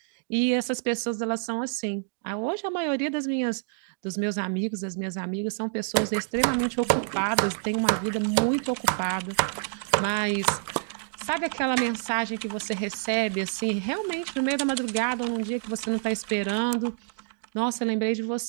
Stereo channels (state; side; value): silent; left; 60 dB below the other